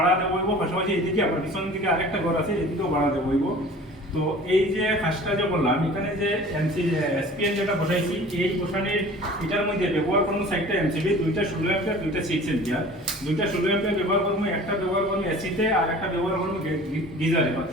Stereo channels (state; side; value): normal; both; correlation 0.44